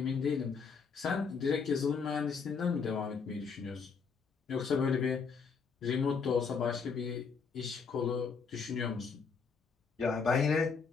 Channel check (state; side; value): quieter; right; 5.5 dB